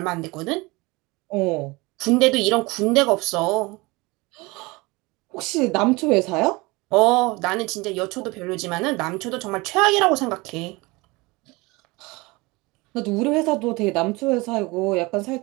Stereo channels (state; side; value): quieter; left; 23.8 dB